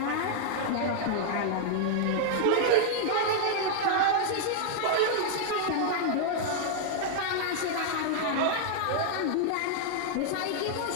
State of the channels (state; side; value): different; both; correlation -0.01